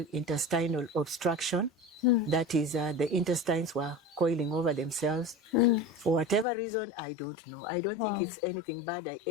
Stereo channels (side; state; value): right; drops out; at 6.5 s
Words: intestinal obstruction. That is, the intestines were coiling over themselves. For whatever reason, I don't know. I don't think it's anything bad I